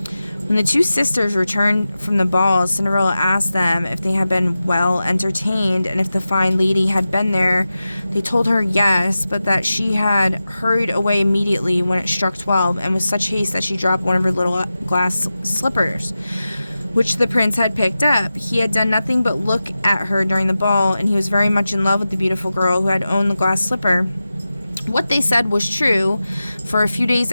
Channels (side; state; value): both; inverted; correlation -0.94